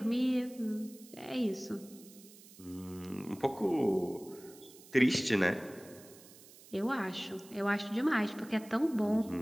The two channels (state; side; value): noise; right; hiss, 21 dB below the sound